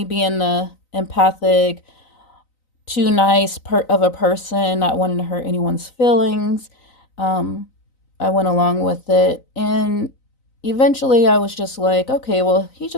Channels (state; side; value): late; right; 3.9 ms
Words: being the empathic, too nice of a person, not wanting to hurt anyone's feelings, um, I went along with it, and eventually I was just like, okay, well, he